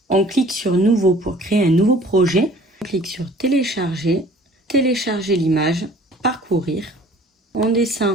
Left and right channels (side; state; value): both; normal; correlation 0.51